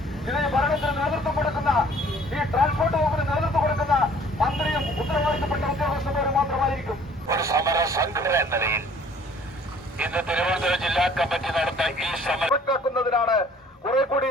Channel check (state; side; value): normal; both; correlation 0.55